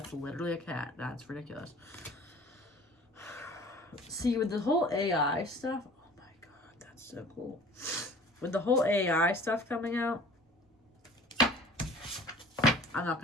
literally a cat. That's ridiculous. See, with the whole AI stuff, so cool. With the whole AI stuff coming out, I'm not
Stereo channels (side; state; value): both; normal; correlation 0.47